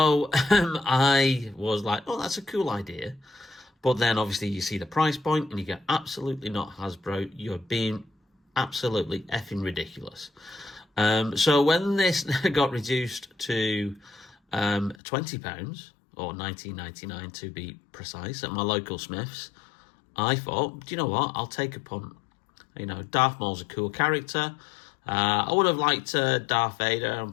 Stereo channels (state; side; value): drops out; right; at 15.0 s